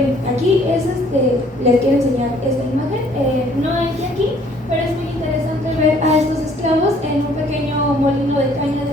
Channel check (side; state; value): both; normal; correlation 0.60